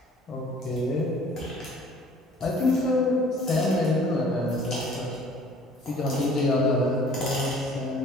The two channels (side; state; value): both; normal; correlation 0.52